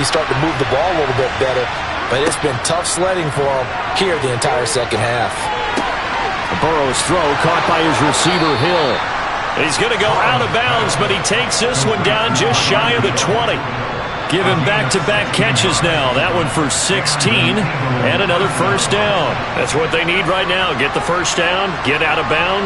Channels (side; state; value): both; identical; correlation 1.00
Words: start to move the ball a little bit better. But it's been tough sledding for them here the entire second half. Burrow's throw caught by his receiver, Hill. He's going to go out of bounds, but he takes this one down just shy of the 20. Give him back-to-back catches now. That one for 16 and another first down. That's what they need right now. Get the first down, get out of